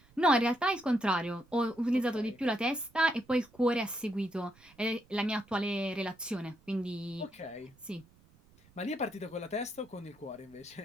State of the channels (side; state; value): right; noise; rumble, 29 dB below the sound